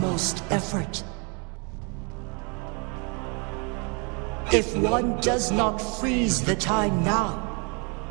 effort. If one does not freeze the time now,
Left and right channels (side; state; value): left; quieter; 33.8 dB